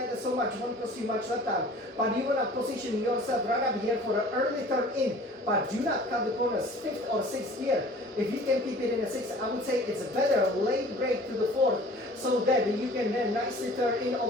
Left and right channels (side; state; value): both; normal; correlation 0.47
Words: so much. Won't cost you much lap time. But you want to position yourself right up here for an early turn in. But do not cut the corners. 5th or 6th gear. If you can keep it in a 6th, I would say it's better late brake to the 4th. So that you can then nicely turn in